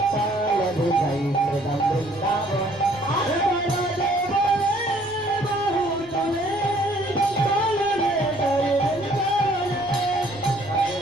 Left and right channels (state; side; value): noise; right; rumble, 22 dB below the sound